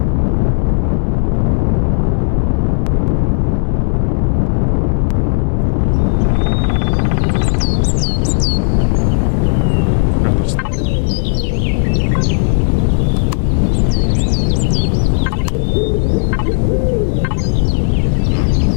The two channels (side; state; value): right; silent; digital silence